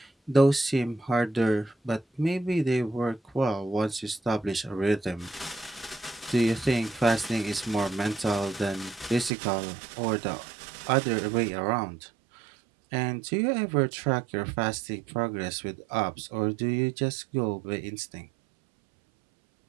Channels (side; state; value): left; drops out; at 9.3 s